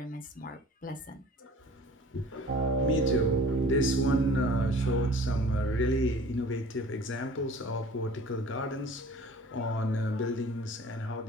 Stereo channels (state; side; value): normal; both; correlation 0.46